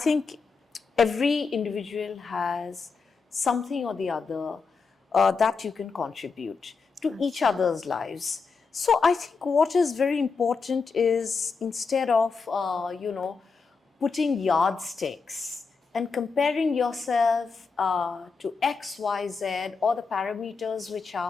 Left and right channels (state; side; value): quieter; right; 4.9 dB